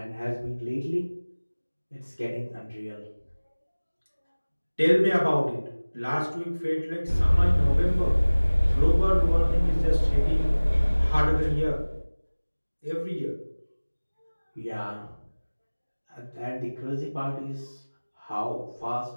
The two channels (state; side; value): inverted; both; correlation -1.00